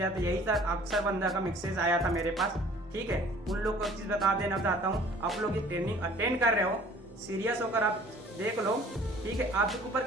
आया था, यही था, अक्सर बंदा का मैसेज आया था मेरे पास, ठीक है। उन लोग को एक चीज़ बता देना चाहता हूँ, आप लोग ये ट्रेनिंग अटेंड कर रहे हो, सीरियस होकर आप देख लो, ठीक है, आपके ऊपर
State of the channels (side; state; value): both; normal; correlation 0.52